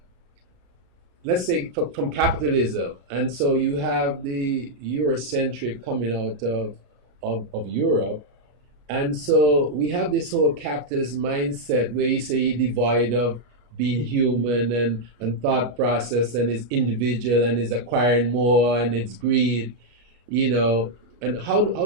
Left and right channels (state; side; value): late; left; 33 ms